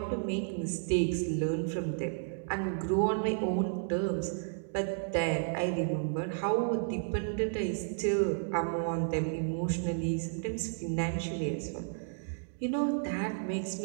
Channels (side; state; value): left; silent; digital silence